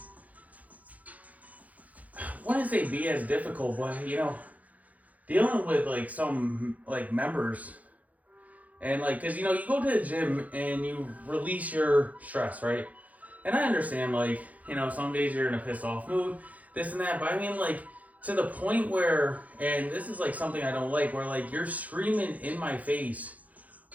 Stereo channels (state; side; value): late; left; 0.074 ms